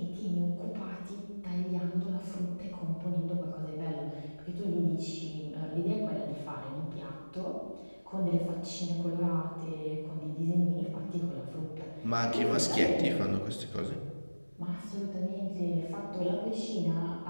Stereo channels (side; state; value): both; inverted; correlation -1.00